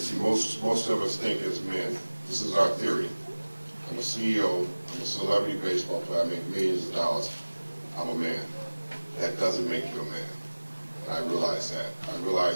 most of us think as men, this is our theory. I'm a CEO, I'm a celebrity baseball player, I make millions of dollars, I'm a man. That doesn't make you a man. And I realized that. I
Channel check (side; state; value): both; inverted; correlation -1.00